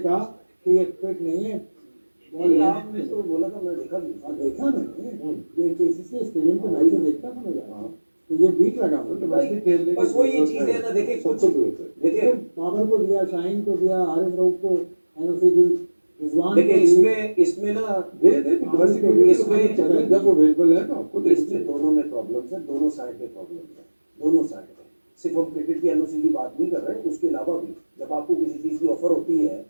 कहा कि ये फिट नहीं है। आपने तो बोला था, मैं देखा भी देखा मैंने, ये केसीसी स्टेडियम पे मैच देखता था मैं जाना, तो ये बीट लगा मुझे। बस वो ये चीज है ना, देखिए कुछ देखिए बाबर को दिया, शाहीन को दिया, आरिफ रऊफ को एनओसी दी, रिजवान देखिए इसमें ना दे इसमें जब अवेलेबल है तो आपको इसमें दोनों दोनों में प्रॉब्लम्स है, दोनों साइड पे प्रॉब्लम्स है, दोनों साइड पे। सिर्फ हम क्रिकेट की एनओसी की बात नहीं कर रहे, उसके अलावा भी जब आपको किसी चीज़ की ऑफर होती है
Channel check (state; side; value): inverted; both; correlation -1.00